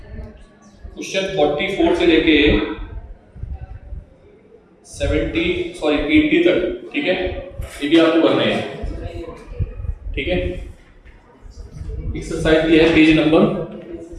क्वेश्चन 44 से लेके 80 तक, ठीक है, ये भी आपको करना है, ठीक है। एक्सरसाइज ये है पेज नंबर,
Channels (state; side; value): identical; both; correlation 1.00